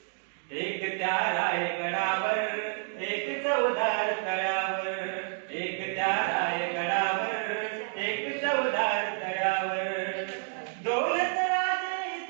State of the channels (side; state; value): left; silent; 58 dB below the other